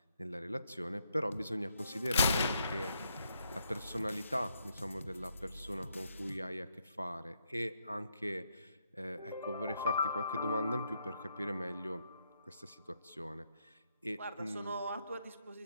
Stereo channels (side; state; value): both; inverted; correlation -0.77